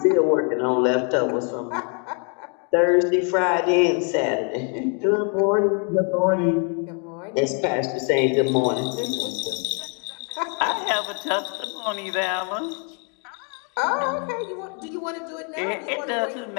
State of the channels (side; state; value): right; quieter; 38.8 dB